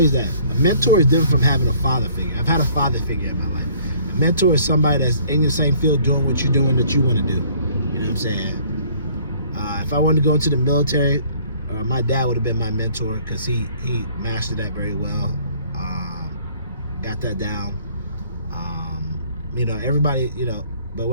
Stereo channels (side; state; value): both; inverted; correlation -0.57